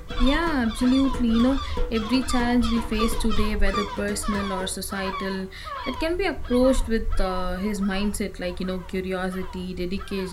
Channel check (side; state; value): both; identical; correlation 1.00